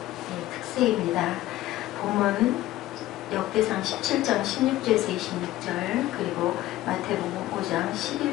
특세입니다. 본문 역대상 17장 16절에서 26절 그리고 마태복음 5장 11,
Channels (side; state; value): right; quieter; 15.6 dB